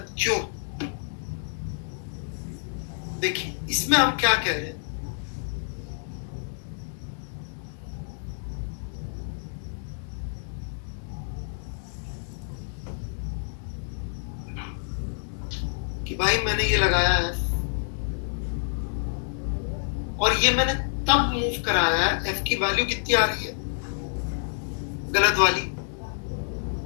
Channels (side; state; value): right; silent; digital silence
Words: क्यों। देखिए इसमें हम क्या कह रहे हैं, कि भाई मैंने ये लगाया है और ये मैंने तब मूव कराया है, F की वैल्यू कितनी आ रही है, गलत वाली,